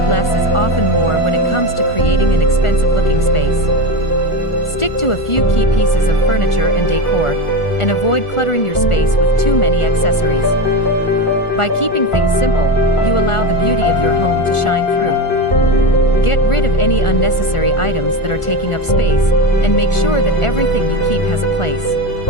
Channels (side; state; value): right; late; 1.4 ms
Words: less is often more when it comes to creating an expensive-looking space. Stick to a few key pieces of furniture and decor, and avoid cluttering your space with too many accessories. By keeping things simple, you allow the beauty of your home to shine through. Get rid of any unnecessary items that are taking up space, and make sure that everything you keep has a place.